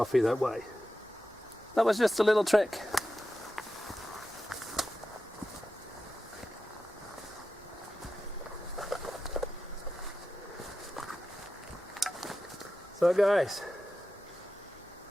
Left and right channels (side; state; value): both; normal; correlation 0.92